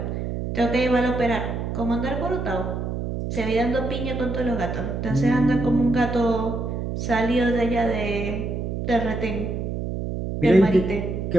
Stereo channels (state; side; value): noise; right; hum, 3 dB below the sound